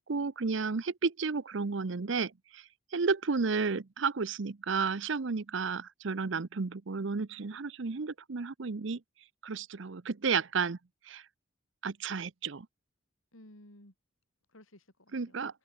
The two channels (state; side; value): quieter; left; 4.5 dB